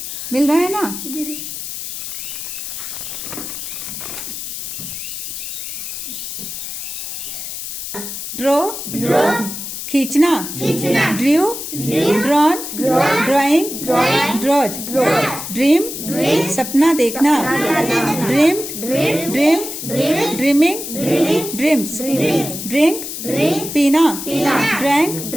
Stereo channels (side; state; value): left; noise; hiss, 7 dB below the sound